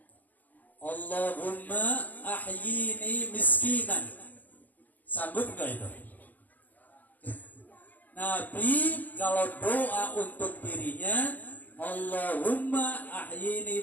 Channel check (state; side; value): late; right; 0.082 ms